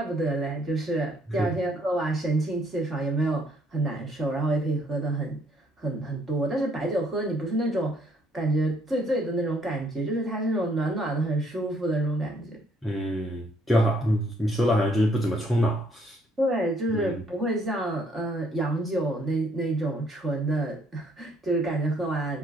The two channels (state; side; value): normal; both; correlation 0.66